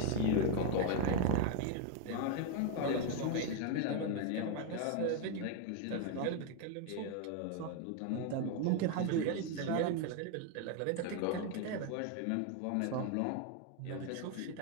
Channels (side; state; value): both; different; correlation 0.01